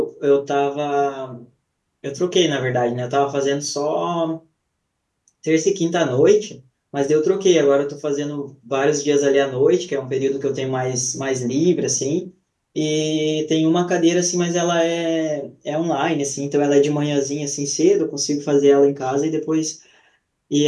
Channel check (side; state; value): both; identical; correlation 1.00